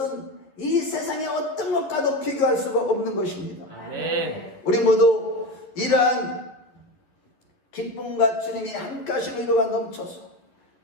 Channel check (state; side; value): late; right; 11 ms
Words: 이 세상의 어떤 것과도 비교할 수가 없는 것입니다. 아멘. 우리 모두 이러한 기쁨과 주님이 함께 하시는 위로가 넘쳐서